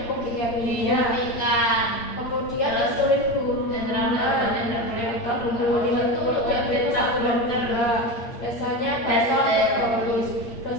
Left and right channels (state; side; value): late; right; 8.7 ms